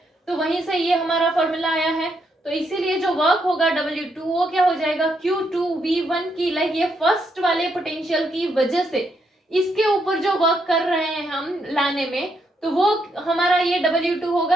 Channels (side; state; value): both; normal; correlation 0.77